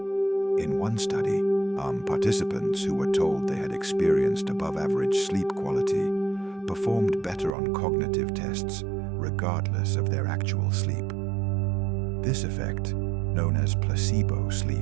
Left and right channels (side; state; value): left; drops out; at 7.5 s